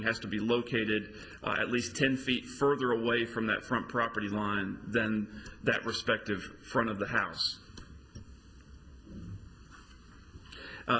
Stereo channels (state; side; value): identical; both; correlation 1.00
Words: has to be located at least 10 feet further away from that front property line than that respective front of the house.